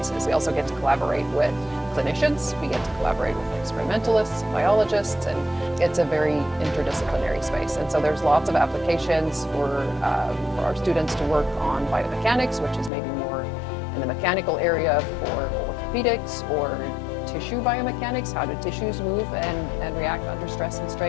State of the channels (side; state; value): right; drops out; at 12.9 s